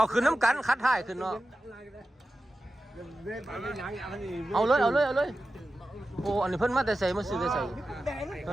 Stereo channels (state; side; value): normal; both; correlation 0.93